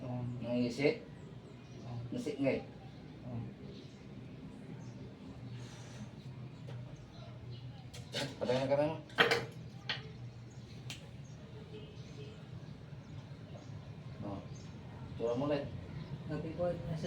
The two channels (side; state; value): both; identical; correlation 1.00